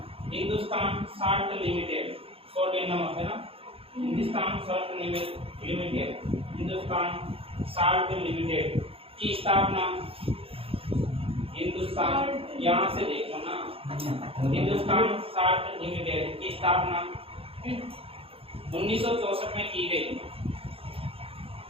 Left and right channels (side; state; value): left; late; 0.27 ms